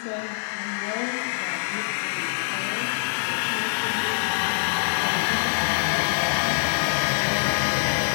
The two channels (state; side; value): silent; right; digital silence